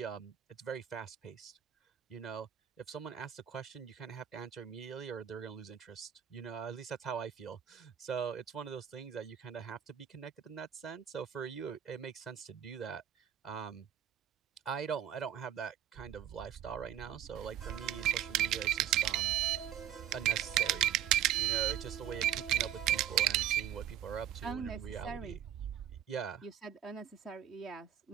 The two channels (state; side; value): quieter; left; 10.5 dB